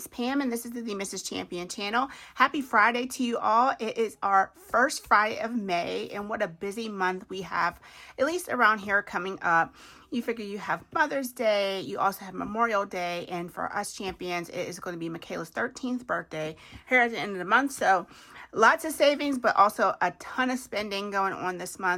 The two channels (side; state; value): both; identical; correlation 1.00